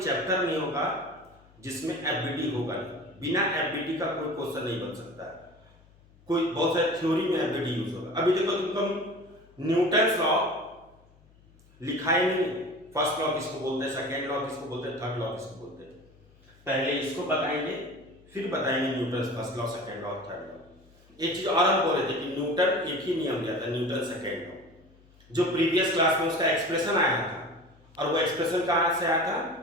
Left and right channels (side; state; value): left; noise; hum, 28 dB below the sound